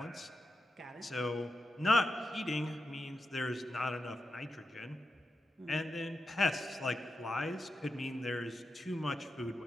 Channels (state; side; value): normal; both; correlation 0.88